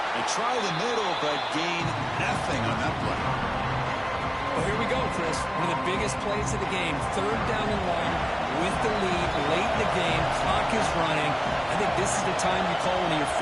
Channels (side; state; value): both; identical; correlation 1.00